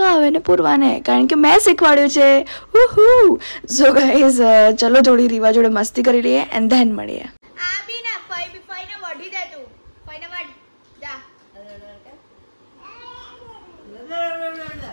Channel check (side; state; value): both; inverted; correlation -1.00